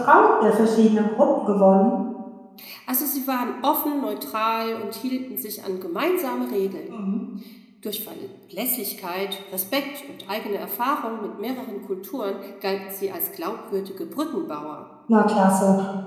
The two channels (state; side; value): identical; both; correlation 1.00